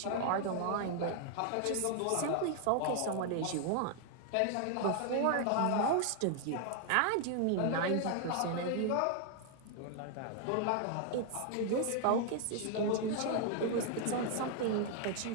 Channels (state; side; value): different; both; correlation 0.00